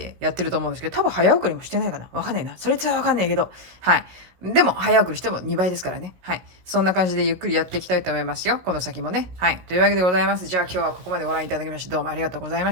やってると思うんですけど、多分早送りもしてないかな。わかんないな。それはわかんないけど。はい。でも、早送りしても2倍ですからね。はい。そんな感じでゆっくりやっていきたいと思いますよ。この先もね。はい。というわけでございます。じゃあ今日はここまでご覧いただきまして、どうもありがとうございま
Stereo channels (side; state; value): left; late; 17 ms